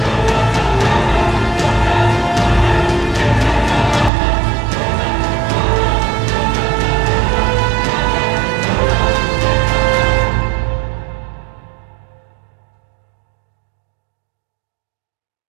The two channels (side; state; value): left; drops out; at 4.1 s